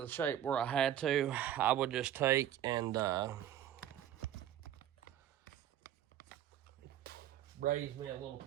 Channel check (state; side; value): quieter; left; 11.4 dB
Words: the shape where I had to, I would just take and raise me a little